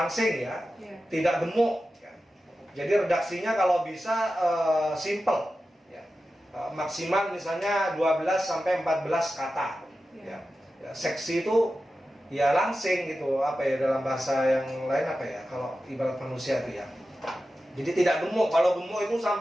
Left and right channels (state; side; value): normal; both; correlation 0.93